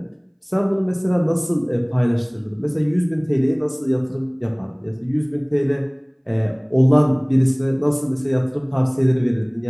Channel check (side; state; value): both; identical; correlation 1.00